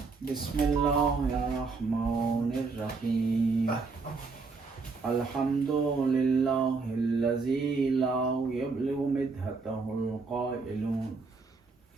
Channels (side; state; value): left; quieter; 4.3 dB